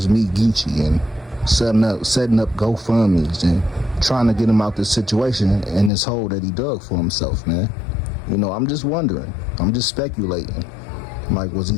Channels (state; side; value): drops out; right; at 5.9 s